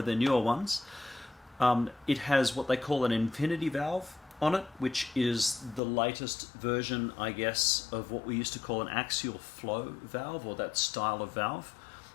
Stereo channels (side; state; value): right; drops out; at 5.8 s